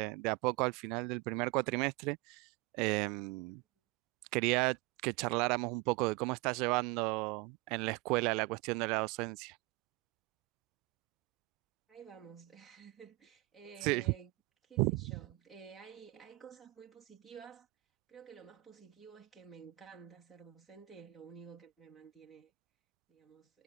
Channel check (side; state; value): left; quieter; 22.1 dB